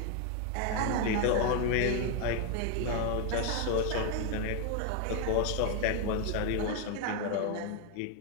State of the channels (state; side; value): different; both; correlation 0.01